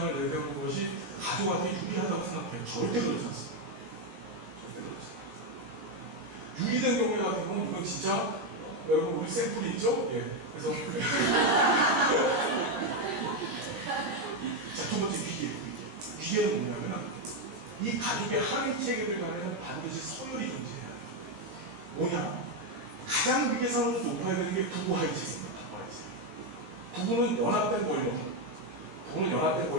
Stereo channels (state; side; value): late; left; 19 ms